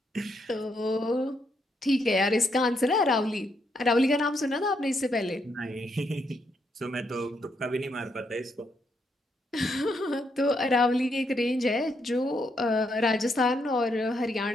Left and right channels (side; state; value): both; normal; correlation 0.77